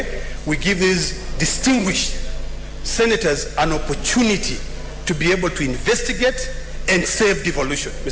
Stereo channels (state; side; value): identical; both; correlation 1.00